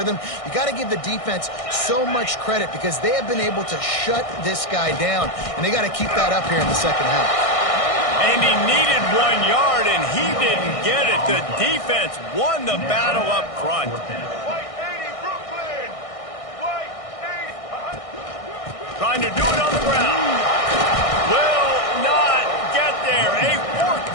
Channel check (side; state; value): right; late; 1.6 ms